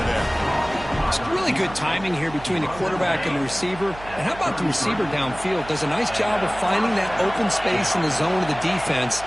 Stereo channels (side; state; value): right; noise; hum, 16 dB below the sound